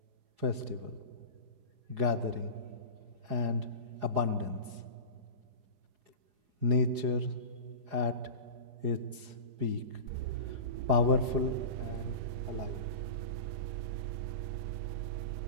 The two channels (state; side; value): late; left; 4.8 ms